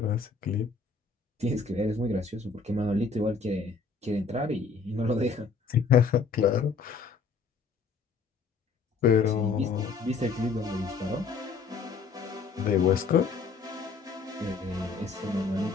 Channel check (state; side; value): quieter; right; 4.8 dB